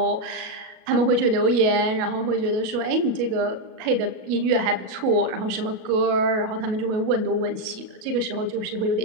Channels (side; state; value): left; late; 37 ms